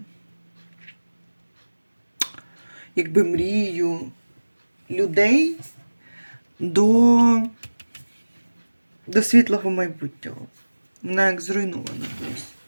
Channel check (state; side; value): inverted; both; correlation -1.00